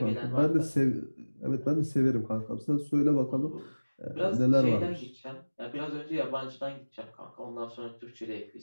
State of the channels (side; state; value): both; inverted; correlation -1.00